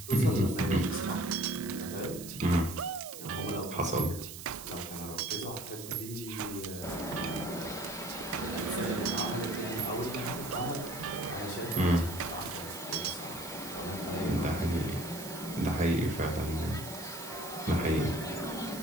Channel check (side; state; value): right; noise; hiss, 11 dB below the sound